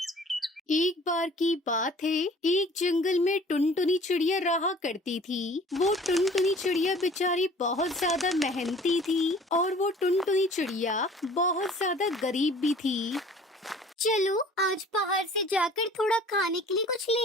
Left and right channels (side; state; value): both; normal; correlation 0.49